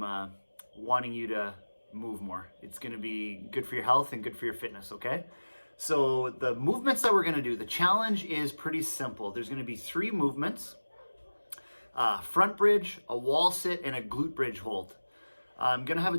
wanting you to move more. It's going to be good for your health and good for your fitness, okay? So the movements that we're going to do, the challenge is pretty simple. There's going to be 3 movements: front bridge, a wall sit, and a glute bridge hold. I'm going to have a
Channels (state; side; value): inverted; both; correlation -1.00